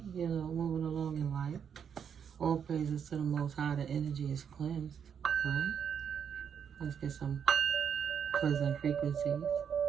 you know, moving along in life. All praises to the Most High, the energy is cleansed, right? Let's get some pleasant frequencies,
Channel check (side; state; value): left; quieter; 7.6 dB